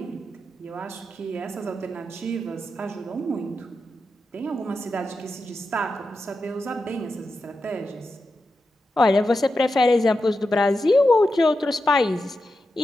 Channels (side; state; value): both; normal; correlation 0.89